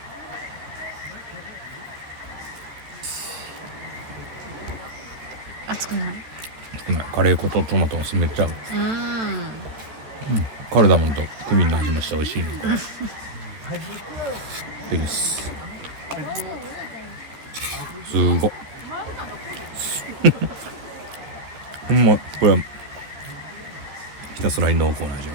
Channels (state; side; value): late; left; 13 ms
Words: 熱くない？カレー粉とトマトがめっちゃ合う。カルダモンとクミンの味もして美味しいね。ですごっほんまこれはひたすらに濃厚な味が